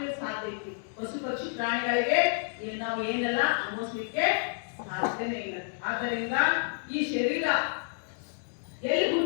ಸಾಧ್ಯ ಐತಿ. ಪಶು ಪಕ್ಷಿ ಪ್ರಾಣಿಗಳಿಗೆ ನಾವು ಏನೆಲ್ಲ ಅನುಭವಿಸ್ಲಿಕ್ಕೆ ಸಾಧ್ಯನೇ ಇಲ್ಲ. ಆದ್ದರಿಂದ ಈ ಶರೀರ ಎಲ್ಲಿ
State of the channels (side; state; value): right; silent; digital silence